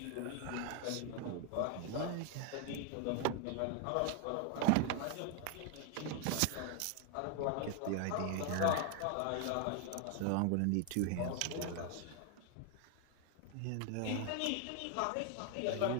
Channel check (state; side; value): different; both; correlation 0.00